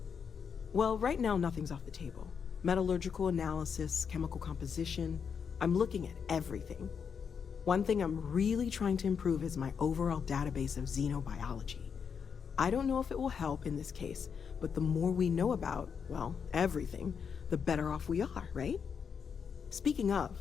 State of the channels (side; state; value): right; quieter; 6.7 dB